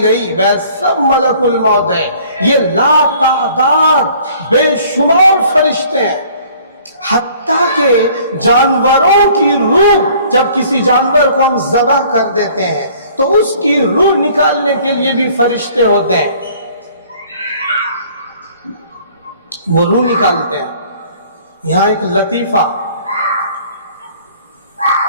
گئی، وہ سب ملک الموت ہے۔ یہ لا تعداد بے شمار فرشتے ہیں، حتیٰ کہ جانوروں کی روح، جب کسی جانور کو ہم ذبح کر دیتے ہیں تو اس کی روح نکالنے کے لیے بھی فرشتے ہوتے ہیں، وہ روح نکالتے ہیں۔ یہاں ایک لطیفہ،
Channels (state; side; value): inverted; both; correlation -0.54